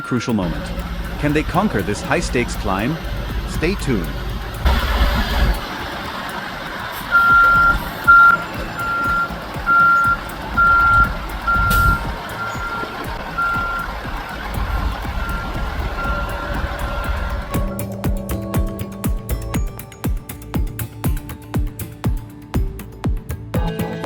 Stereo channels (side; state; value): both; identical; correlation 1.00